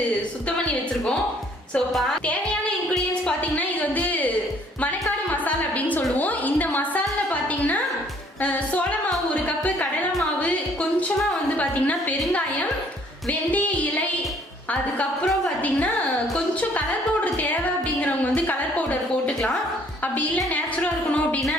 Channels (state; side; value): normal; both; correlation 0.60